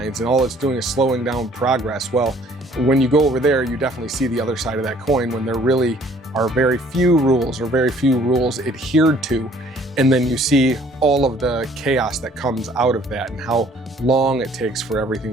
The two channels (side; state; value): both; normal; correlation 0.57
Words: and all it's doing is slowing down progress. Well, when you go over there, you definitely see the other side of that coin, when there really are very few rules adhered to. And then you see all of the chaos that comes out of that and how long it takes for